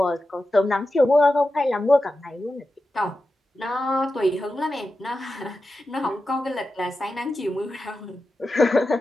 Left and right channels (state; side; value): normal; both; correlation 0.91